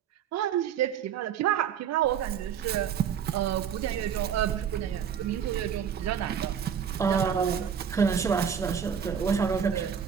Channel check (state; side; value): quieter; left; 8.0 dB